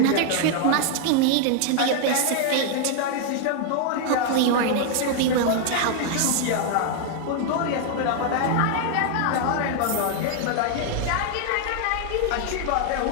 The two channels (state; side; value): different; both; correlation 0.00